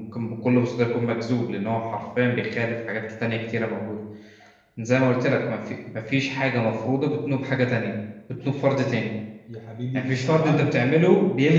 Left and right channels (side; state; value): both; identical; correlation 1.00